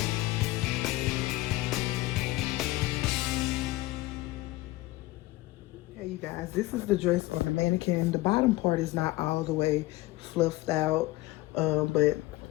You guys, this is the dress on the mannequin. The bottom part is not all the way fluffed out, but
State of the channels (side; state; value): right; quieter; 18.7 dB